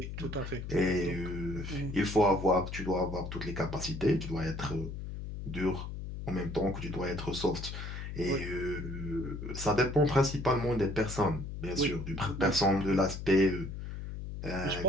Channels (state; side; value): noise; left; hum, 7 dB below the sound